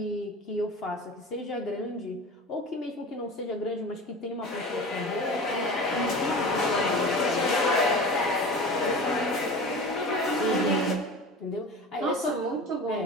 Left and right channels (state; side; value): normal; both; correlation 0.35